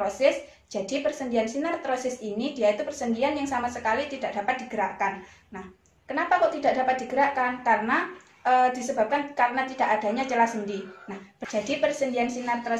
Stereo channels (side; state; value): both; identical; correlation 1.00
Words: Jadi persendian sinartrosis ini dia itu persendian yang sama sekali tidak dapat digerakkan. Nah, kenapa kok tidak dapat digerakkan? Karena disebabkan karena tidak adanya celah sendi. Nah, jadi persendian